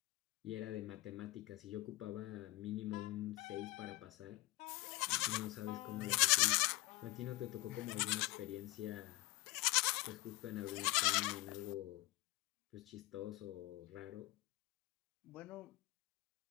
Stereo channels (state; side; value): quieter; right; 20.7 dB